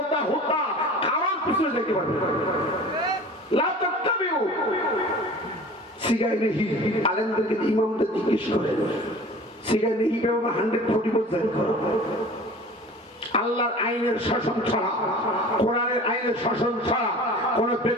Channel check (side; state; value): both; normal; correlation 0.42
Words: হোতা কারোর পিছনে যেতে পারবে না। লা তাত্তাবিউ সিগাই নেহি, আলেমদেরকে ইমামদের জিজ্ঞেস করে, সিগাই নেহি ব্যবহার 140% করো। আল্লাহর আইনের শাসন ছাড়া, কোরআনের আইনের শাসন ছাড়া কোন